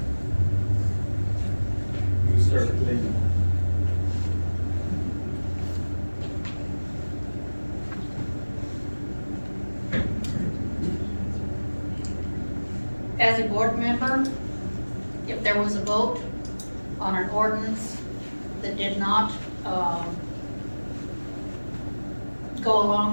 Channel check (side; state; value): both; inverted; correlation -1.00